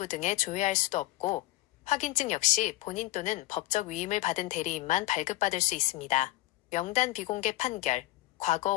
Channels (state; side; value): quieter; right; 17.7 dB